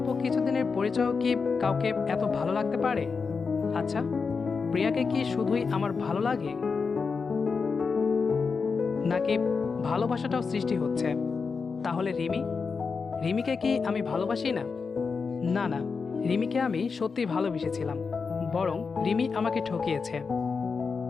কিছুদিনের পরিচয়ও কি কাউকে এত ভালো লাগতে পারে? আচ্ছা, প্রিয়াকে কি শুধুই আমার ভালো লাগে, নাকি ভালোবাসাটাও সৃষ্টি হচ্ছে? তাহলে রিমিকে কি আমি ভালোবাসি না? না না, রিমিকে আমি সত্যি ভালোবেসেছিলাম, বরং রিমি আমাকে ঠকিয়েছে।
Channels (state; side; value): quieter; right; 5.1 dB